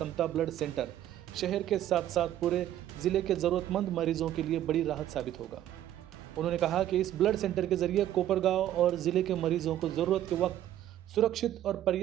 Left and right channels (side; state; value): left; quieter; 12.2 dB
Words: ब्लड सेंटर शहर के साथ साथ पूरे जिले के जरूरतमंद मरीजों के लिए बड़ी राहत साबित होगा। उन्होंने कहा कि इस ब्लड सेंटर के जरिए कोपरगांव और जिले के मरीजों को जरूरत के वक्त सुरक्षित और